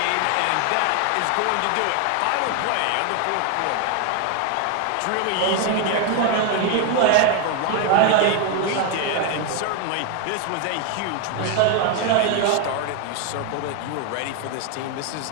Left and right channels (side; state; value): both; different; correlation 0.01